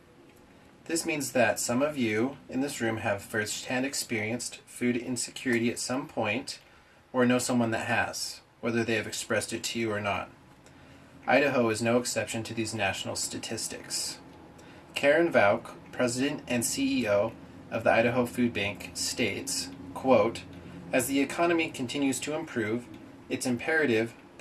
This means that some of you in this room have firsthand experienced food insecurity at some point or know someone that has, whether they have expressed it to you or not. Idaho is no exception to these national statistics. Karen Vauk, President and CEO of the Idaho Food Bank, states, quote, "As the economy continues to improve, it's imperative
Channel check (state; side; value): identical; both; correlation 1.00